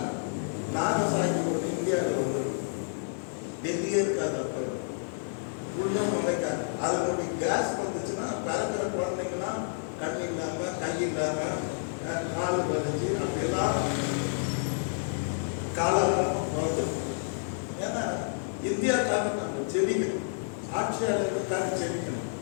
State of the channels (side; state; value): right; silent; 58 dB below the other